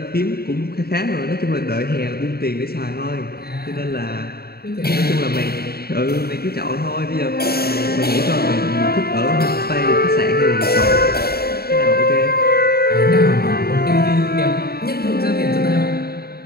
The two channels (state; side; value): late; right; 0.45 ms